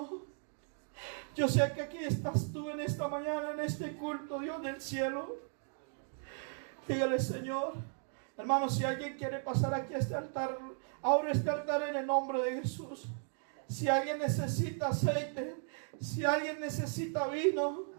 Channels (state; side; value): silent; left; 54 dB below the other